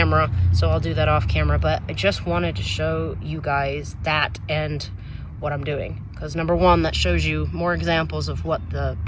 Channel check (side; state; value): both; identical; correlation 1.00